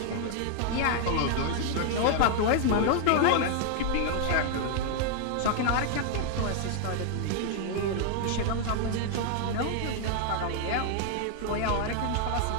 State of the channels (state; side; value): different; both; correlation 0.00